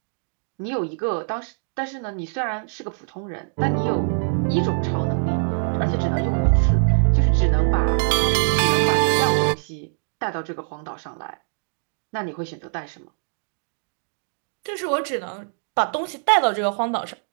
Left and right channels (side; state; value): left; silent; digital silence